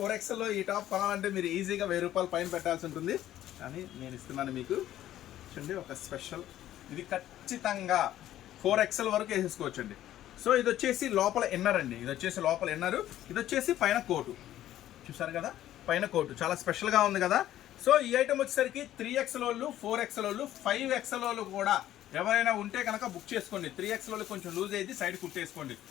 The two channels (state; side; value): quieter; right; 12.9 dB